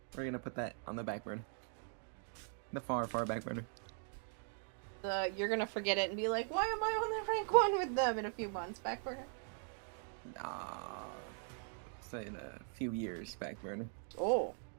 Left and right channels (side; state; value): left; silent; 51 dB below the other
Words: We're gonna put that on the back burner. The far, far back burner. You're gonna forget it and be like, why am I on the rank 1 with them in a few months? Back burner? Say in a few years, back burner. Oh.